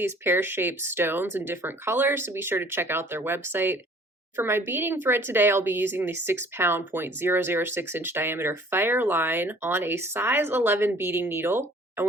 pear-shaped stones in different colors, so be sure to check out their website. For my beading thread today, I'll be using the 6-pound 0.006-inch diameter Fireline on a size 11 beading needle. I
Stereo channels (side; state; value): both; normal; correlation 0.53